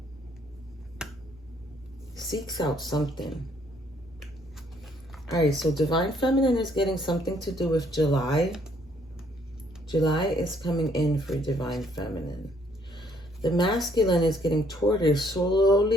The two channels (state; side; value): normal; both; correlation 0.66